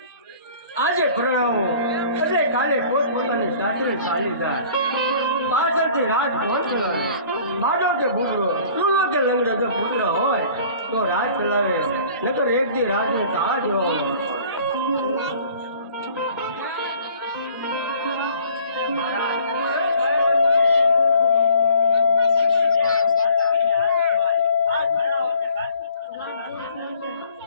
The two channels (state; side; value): inverted; both; correlation -0.53